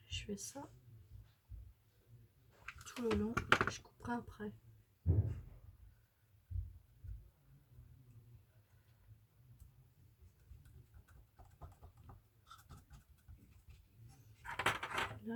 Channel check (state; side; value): identical; both; correlation 1.00